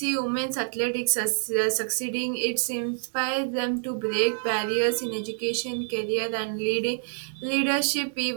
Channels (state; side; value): silent; left; digital silence